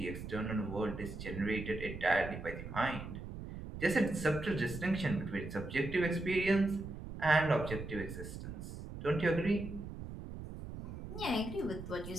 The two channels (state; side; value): noise; right; rumble, 9 dB below the sound